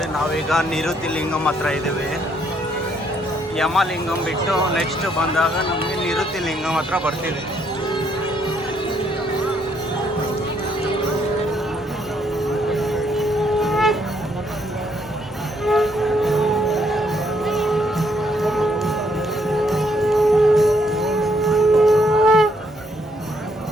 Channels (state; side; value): normal; both; correlation 0.71